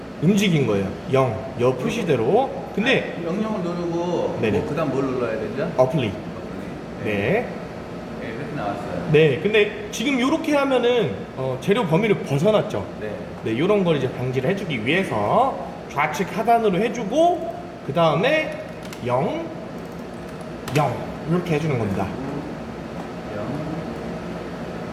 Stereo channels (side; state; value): both; identical; correlation 1.00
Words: 움직인 거예요. 0, 여 표시대로. 근데 영영을 누르고 네네. 뭐 그다음 뭘 눌러야 되죠? 어플리. 네. 네. 네, 이렇게 나왔어요. 네, 근데 지금 이렇게 하면은 재료 범위를 벗어났죠. 네. 네, 이런 걸 이제 방지를 해주기 위해서 좌측 하단으로 해주고 그 다음에 0, 0 이렇게 해주는 겁니다. 0.